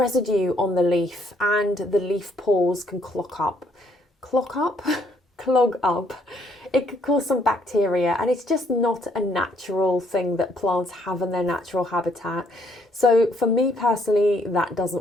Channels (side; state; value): both; normal; correlation 0.68